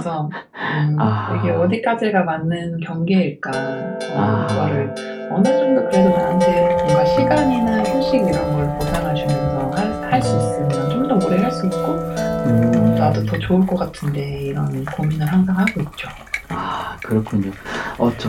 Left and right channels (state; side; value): identical; both; correlation 1.00